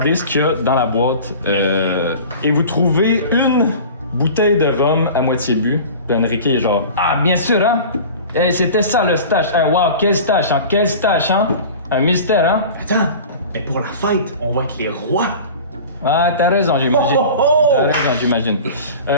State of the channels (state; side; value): inverted; both; correlation -0.38